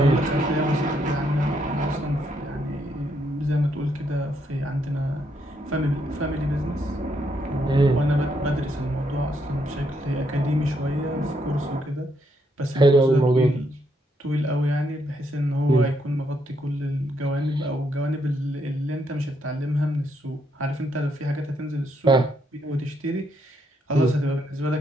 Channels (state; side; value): normal; both; correlation 0.76